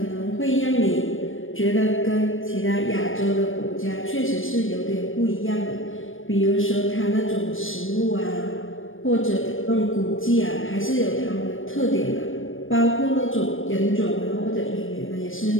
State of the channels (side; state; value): right; late; 0.59 ms